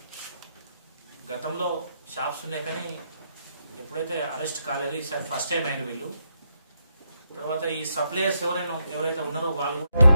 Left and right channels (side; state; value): both; inverted; correlation -0.80